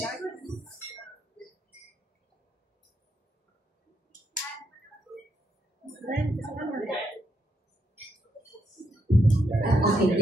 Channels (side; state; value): both; normal; correlation 0.79